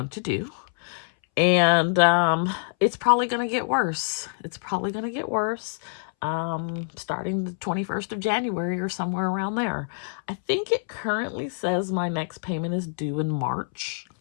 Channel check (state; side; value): silent; right; 61 dB below the other